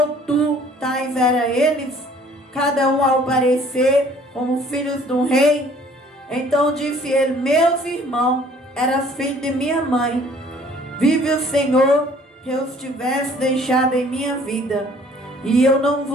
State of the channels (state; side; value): normal; both; correlation 0.56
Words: tu tais era eles? Cada um ao parecer como filhos de um rei. Então disse ele, meus irmãos, eras filho de minha mãe. Vive o Senhor, que eu os tivesse deixado em minha vida, e eu não